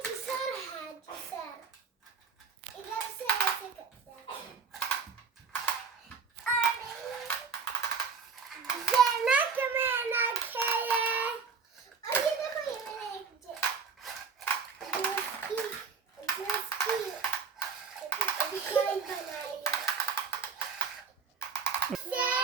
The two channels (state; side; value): quieter; left; 5.7 dB